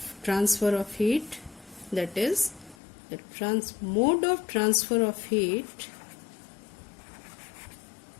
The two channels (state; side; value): drops out; right; at 2.8 s